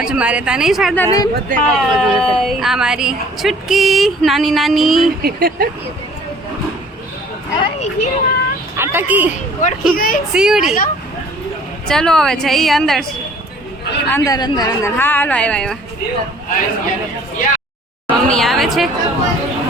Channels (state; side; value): normal; both; correlation 0.53